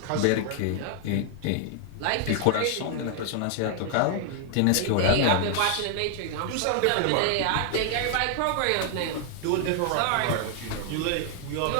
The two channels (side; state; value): both; different; correlation 0.00